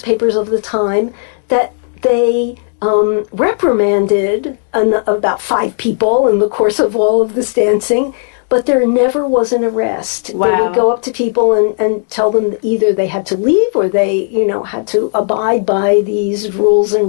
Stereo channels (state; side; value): silent; right; digital silence